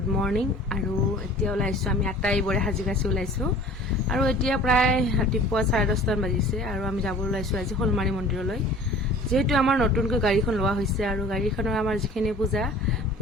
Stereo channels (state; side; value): normal; both; correlation 0.46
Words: morning. আৰু এতিয়া ওলাইছোঁ আমি 8টা এইবোৰে সাজি ওলাইছোঁ। আৰু এতিয়া প্ৰায় ৰাতিপুৱা 10:30 বাজিছে আৰু আমি যাব ওলাইছোঁ আজি শ'লমাৰী মন্দিৰলৈ। যিহেতু আমাৰ নতুনকৈ গাড়ীখন লোৱা হৈছে আৰু গাড়ীখনৰ আমাৰ যিখিনি